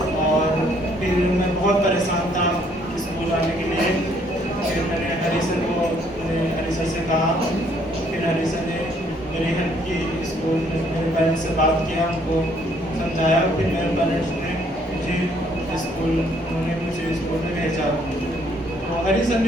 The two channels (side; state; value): both; normal; correlation 0.65